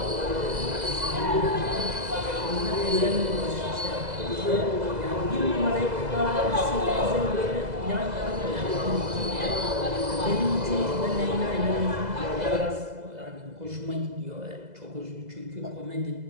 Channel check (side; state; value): left; late; 2.0 ms